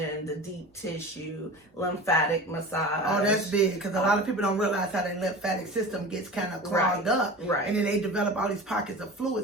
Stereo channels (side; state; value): both; normal; correlation 0.34